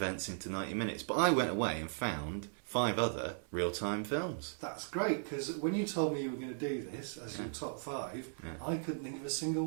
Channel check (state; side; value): silent; left; 53 dB below the other